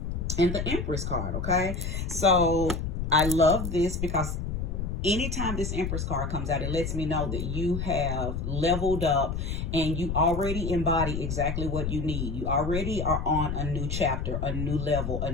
the Empress card, okay? So I love this because anytime this Empress card comes out, it lets me know that you have leveled up and you already embody exactly what you need. You already are on a new chapter, a new level, a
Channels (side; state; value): left; noise; rumble, 3 dB below the sound